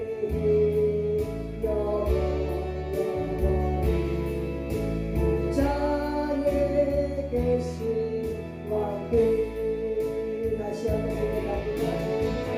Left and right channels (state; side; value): identical; both; correlation 1.00